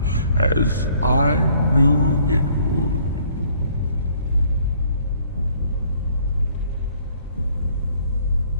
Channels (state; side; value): inverted; both; correlation -0.61